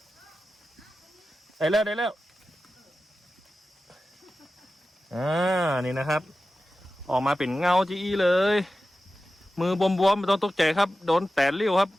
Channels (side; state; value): both; normal; correlation 0.93